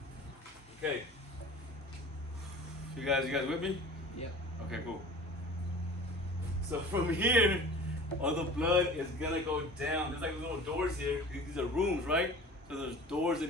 Okay. You guys with me? Yep. Okay, cool. So from here, all the blood is gonna go down. There's like little doors here. These are rooms, right? So there's doors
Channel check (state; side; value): normal; both; correlation 0.41